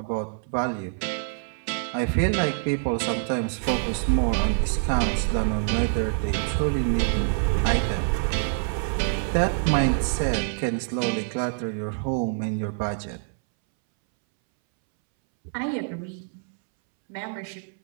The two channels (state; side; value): silent; left; 61 dB below the other